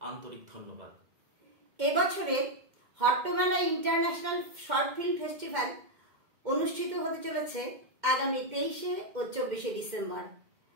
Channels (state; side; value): late; left; 2.1 ms